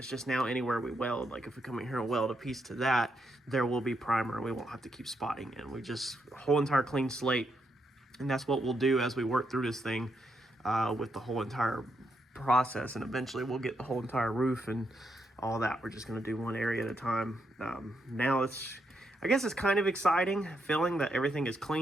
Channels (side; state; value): both; normal; correlation 0.80